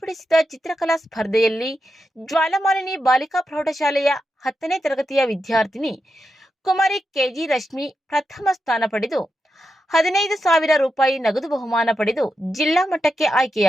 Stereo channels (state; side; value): normal; both; correlation 0.88